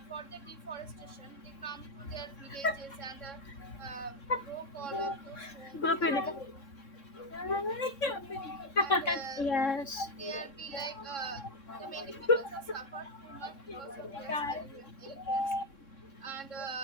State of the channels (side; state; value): right; late; 3.6 ms